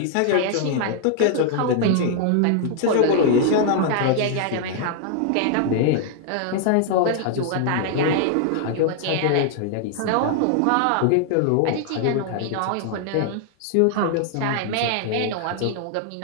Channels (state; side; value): different; both; correlation 0.00